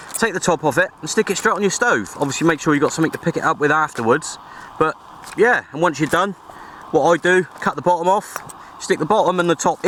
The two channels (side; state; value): both; identical; correlation 1.00